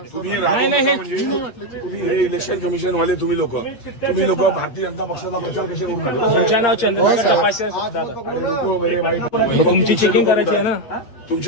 तुम्ही राहू नका म्हणजे तुम्ही हे इलेक्शन कमिशन वाले तुम्ही लोक भारतीय जनता पक्षाचा प्रचार कसे करून आले? तुमचं नाव चंद्रकांत तपासे तुमची चेकिंग करायची आहे ना.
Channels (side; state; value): right; late; 8.8 ms